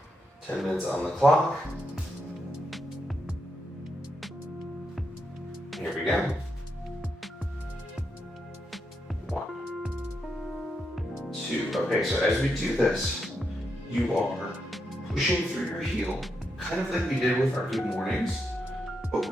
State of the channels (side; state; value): both; normal; correlation 0.83